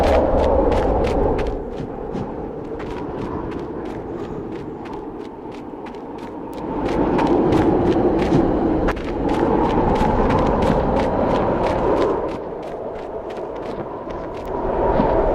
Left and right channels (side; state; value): both; identical; correlation 1.00